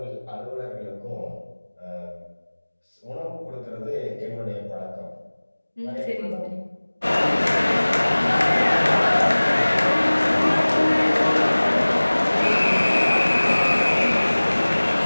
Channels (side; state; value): both; inverted; correlation -1.00